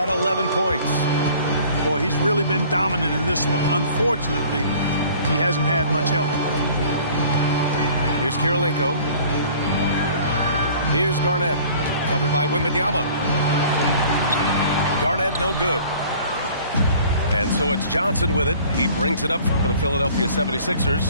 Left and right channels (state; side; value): inverted; both; correlation -0.50